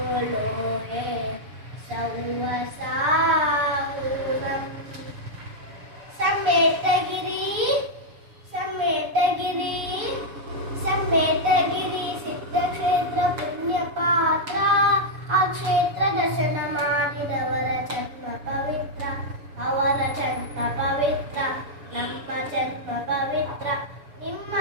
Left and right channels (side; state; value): left; late; 6.8 ms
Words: ಲೋಹೆ ಸೌವಸಾಹುನಂ. ಸಮೇತಗಿರಿ ಸಮೇತಗಿರಿ ಸಮೇತಗಿರಿ ಸಿದ್ಧಕ್ಷೇತ್ರ ಪುಣ್ಯ ಪಾತ್ರ. ಆ ಕ್ಷೇತ್ರ ದರ್ಶನ ಮಾಡಿದವರ ಜನ್ಮ ಪವಿತ್ರ, ಅವರ ಜನ್ಮ ಪವಿತ್ರ, ನಮ್ಮ ಜನ್ಮ ಪವಿತ್ರ, ನಿಮ್ಮ